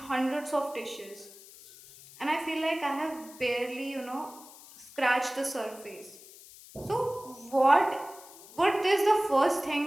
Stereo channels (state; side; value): noise; left; hiss, 20 dB below the sound